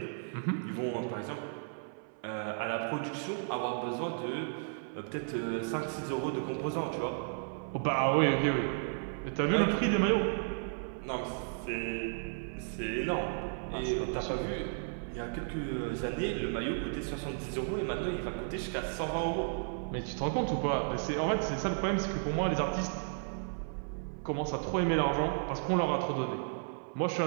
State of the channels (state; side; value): silent; left; 55 dB below the other